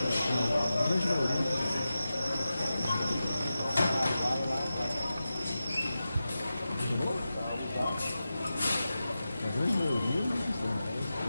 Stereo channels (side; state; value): both; inverted; correlation -0.92